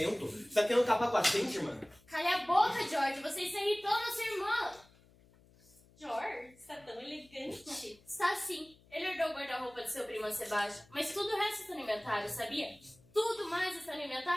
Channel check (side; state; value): left; noise; hum, 28 dB below the sound